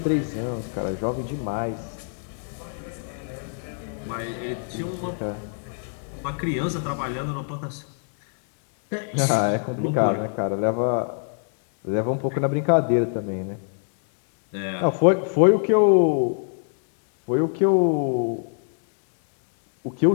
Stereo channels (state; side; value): silent; right; digital silence